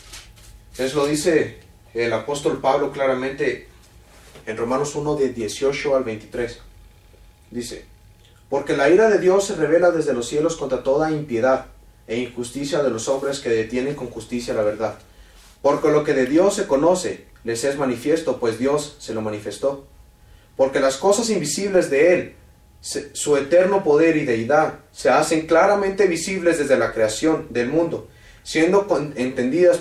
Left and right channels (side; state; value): both; identical; correlation 1.00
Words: Eso lo dice el apóstol Pablo claramente en Romanos 1, de 18 al 23. Dice, porque la ira de Dios se revela desde los cielos contra toda impiedad e injusticia de los hombres que detienen con justicia la verdad. Porque lo que de Dios se conoce les es manifiesto, pues Dios se lo manifestó. Porque las cosas invisibles de Él, su eterno poder y deidad, se hacen claramente visibles desde la creación del mundo, siendo entendidas